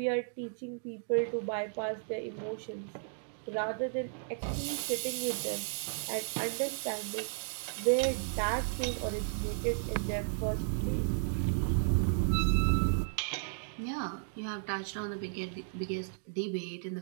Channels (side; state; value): left; silent; digital silence